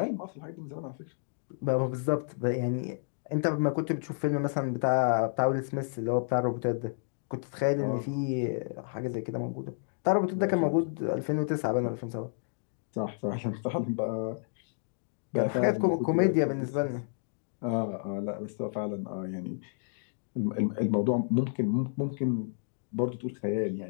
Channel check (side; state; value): right; silent; digital silence